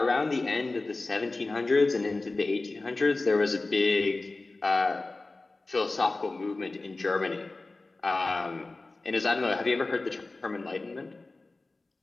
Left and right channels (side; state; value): right; quieter; 3.3 dB